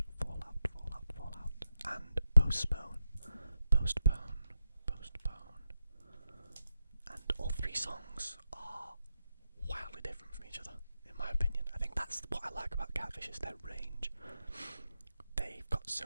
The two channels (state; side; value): inverted; both; correlation -0.88